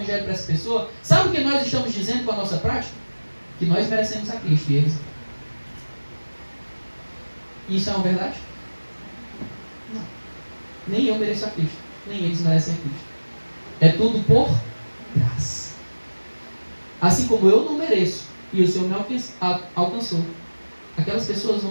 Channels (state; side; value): inverted; both; correlation -1.00